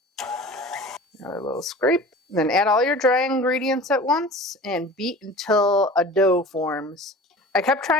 Another little scrape. Then add all your dry ingredients at once and beat until a dough forms. I kept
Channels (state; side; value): normal; both; correlation 0.39